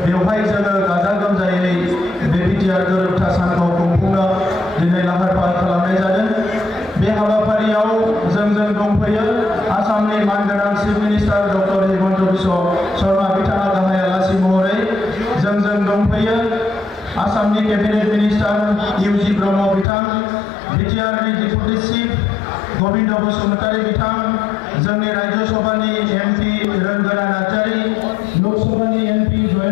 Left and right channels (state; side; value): drops out; right; at 19.9 s